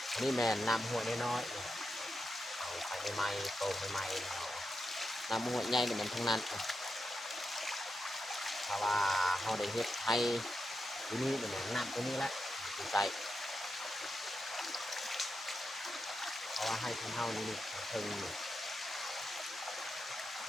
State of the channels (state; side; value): normal; both; correlation 0.87